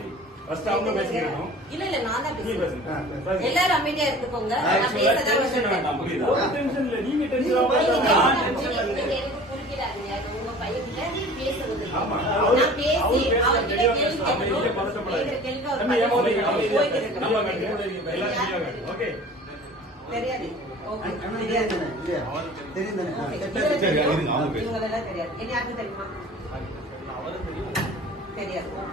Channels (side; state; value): both; normal; correlation 0.43